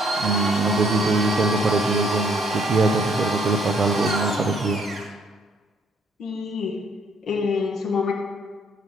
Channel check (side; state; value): both; normal; correlation 0.65